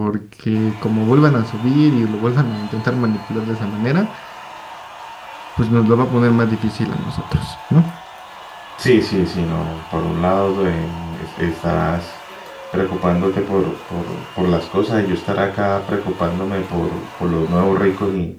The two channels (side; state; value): both; identical; correlation 1.00